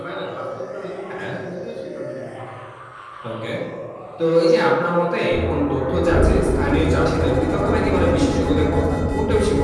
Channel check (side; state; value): both; identical; correlation 1.00